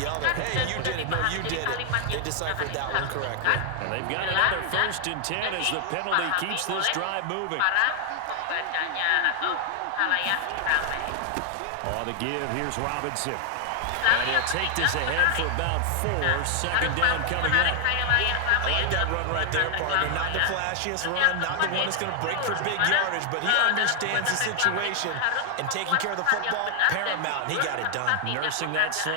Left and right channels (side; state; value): both; different; correlation 0.00